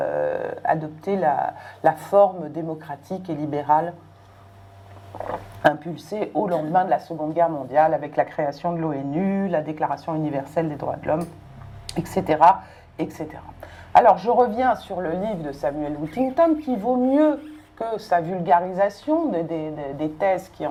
la forme démocratique et libérale impulsée au lendemain de la Seconde Guerre mondiale avec la création de l'ONU, la Déclaration universelle des droits de l'homme, etc., etc. Alors, je reviens sur le livre de Samuel Huntington qui vaut mieux que sa vulgarisation des thèses qui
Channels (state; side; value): identical; both; correlation 1.00